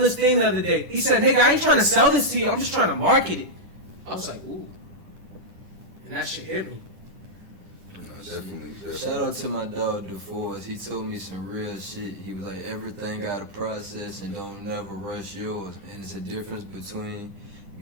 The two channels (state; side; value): late; left; 10 ms